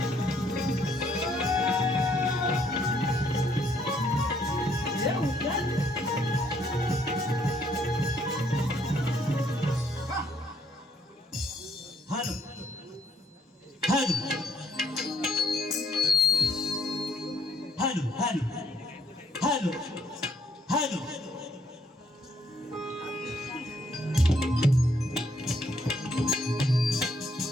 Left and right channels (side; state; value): both; normal; correlation 0.68